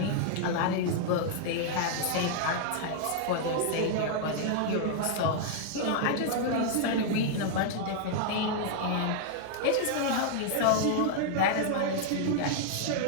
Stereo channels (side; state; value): both; different; correlation -0.01